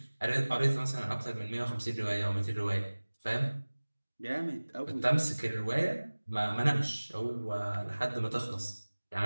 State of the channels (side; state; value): both; inverted; correlation -1.00